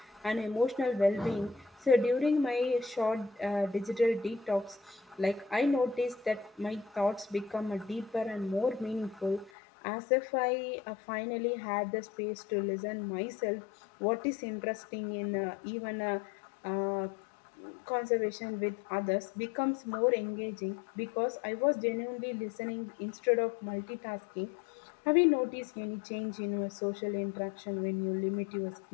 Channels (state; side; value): drops out; right; at 9.5 s